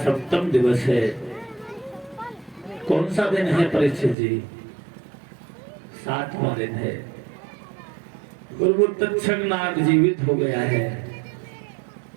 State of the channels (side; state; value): left; drops out; at 4.2 s